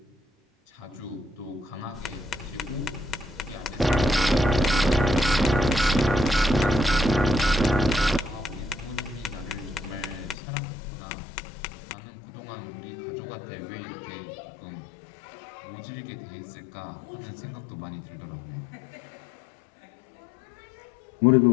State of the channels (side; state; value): right; drops out; at 10.4 s